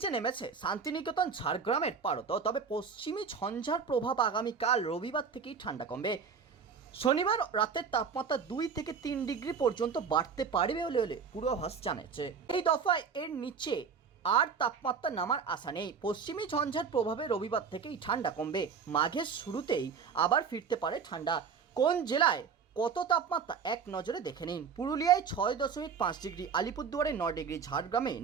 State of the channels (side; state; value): left; quieter; 6.2 dB